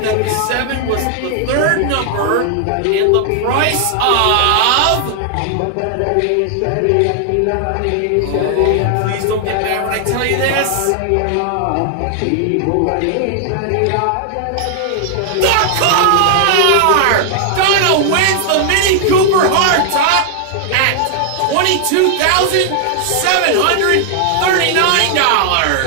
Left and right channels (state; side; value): different; both; correlation 0.00